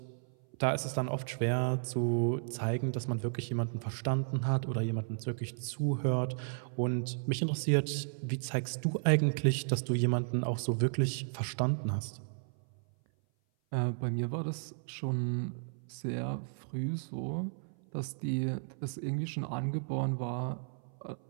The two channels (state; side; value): silent; left; 55 dB below the other